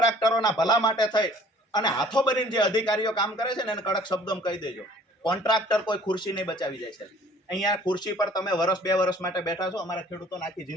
ભલા માટે થઈ અને હાથો બનીને જે અધિકારીઓ કામ કરે છે ને એને કડક શબ્દોમાં કહી દેજો. કોન્ટ્રાક્ટર કોઈ ખુરશી નહીં બચાવી જાય છે. અહીંયા ખુરશી પર તમે વર્ષ 2 વર્ષ માટે બેઠા છો, અમારા ખેડૂતોને આખી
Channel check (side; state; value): both; normal; correlation 0.53